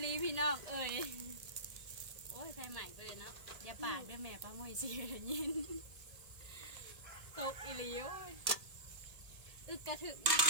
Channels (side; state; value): left; late; 1.7 ms